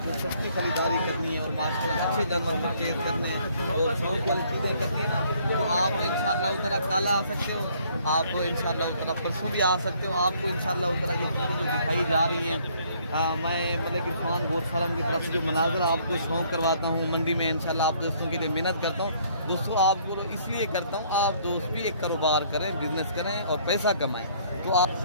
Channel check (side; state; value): both; inverted; correlation -0.63